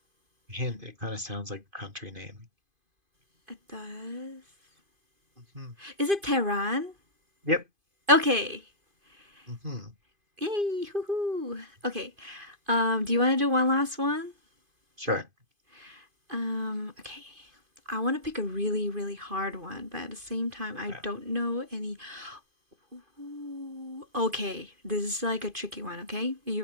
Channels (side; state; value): left; late; 2.5 ms